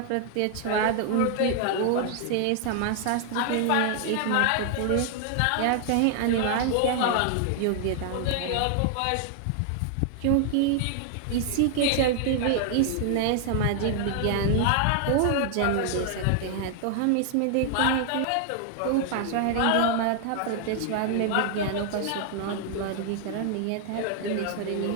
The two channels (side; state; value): both; different; correlation 0.00